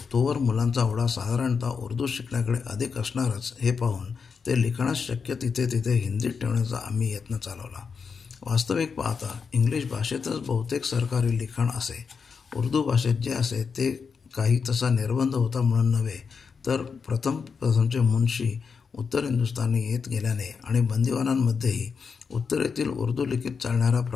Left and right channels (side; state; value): right; quieter; 5.7 dB